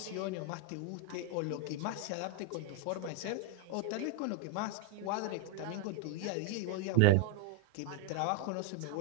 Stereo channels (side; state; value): both; different; correlation 0.01